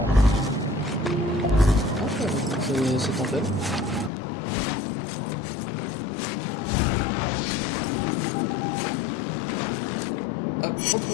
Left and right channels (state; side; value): drops out; right; at 4.1 s